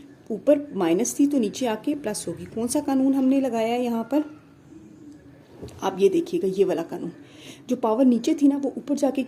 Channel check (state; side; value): identical; both; correlation 1.00